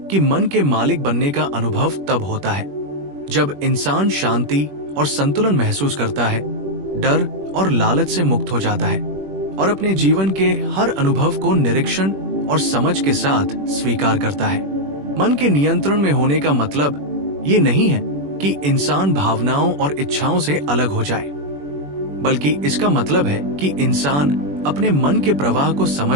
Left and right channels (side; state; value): left; late; 21 ms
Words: कि मन के मालिक बनने का अनुभव तब होता है जब इंसान शांति और संतुलन महसूस करता है, डर और लालच से मुक्त हो जाता है और अपने जीवन के हर अनुभव को निरीक्षण और समझ के साथ स्वीकार करता है। मन के नियंत्रण में होने का मतलब ये नहीं है कि इंसान भावनाओं और इच्छाओं से अलग हो जाए, बल्कि इसका मतलब है कि इंसान अपने मन के प्रवाह को